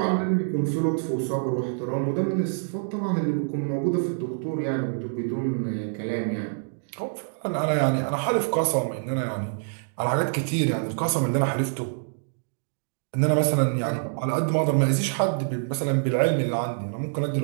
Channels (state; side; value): silent; left; digital silence